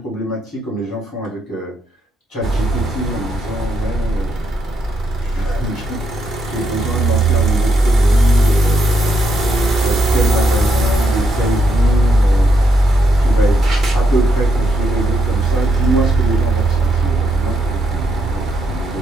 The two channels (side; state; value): both; normal; correlation 0.79